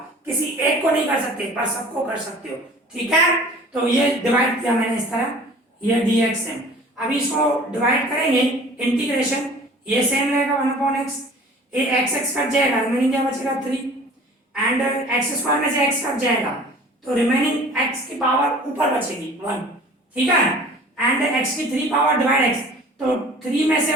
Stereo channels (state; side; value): normal; both; correlation 0.46